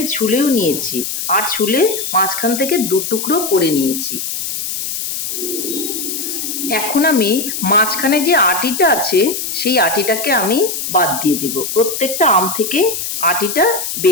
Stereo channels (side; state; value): left; noise; hiss, 4 dB below the sound